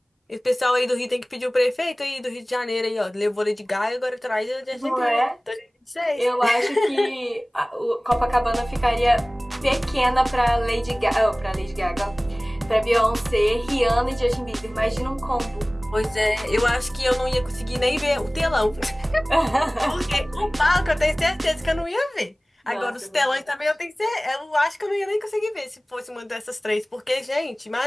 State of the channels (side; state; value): both; normal; correlation 0.98